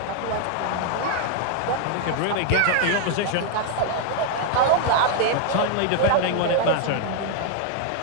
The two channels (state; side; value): different; both; correlation 0.00